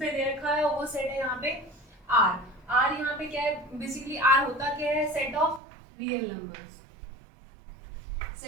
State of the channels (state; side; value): drops out; left; at 5.6 s